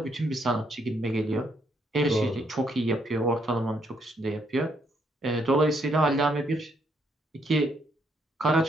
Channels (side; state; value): both; normal; correlation 0.73